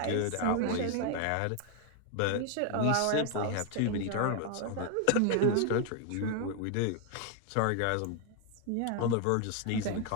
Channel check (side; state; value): both; different; correlation 0.00